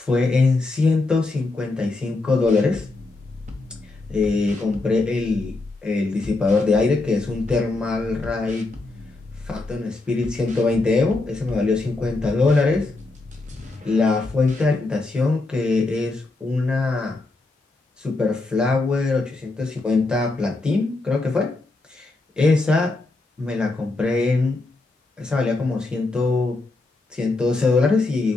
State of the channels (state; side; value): quieter; right; 3.2 dB